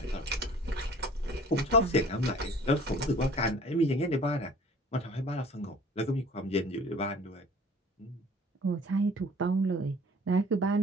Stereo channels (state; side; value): normal; both; correlation 0.49